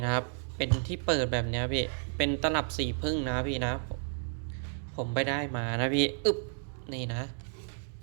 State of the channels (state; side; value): silent; left; digital silence